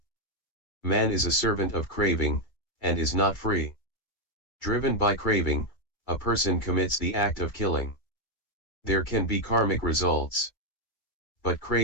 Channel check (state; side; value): late; right; 2.3 ms